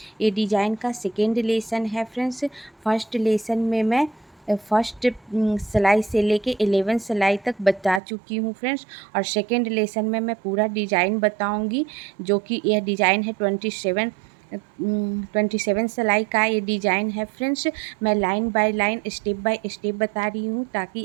ये डिज़ाइन का सेकेंड लेसन है फ्रेंड्स। फर्स्ट लेसन में मैं फर्स्ट सिलाई से लेके 11 सिलाई तक बता चुकी हूँ फ्रेंड्स। और सेकेंड लेसन में मैं पूरा डिज़ाइन बताऊँगी, जो कि यह डिज़ाइन है 27 सिलाई का ये डिज़ाइन है फ्रेंड्स। मैं line by line step by step बता रही हूँ,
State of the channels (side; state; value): left; drops out; at 8.0 s